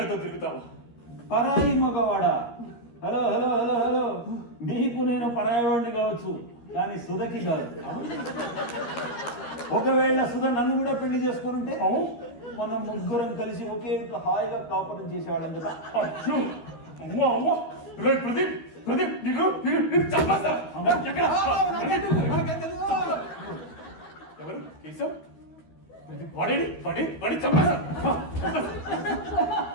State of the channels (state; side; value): late; right; 13 ms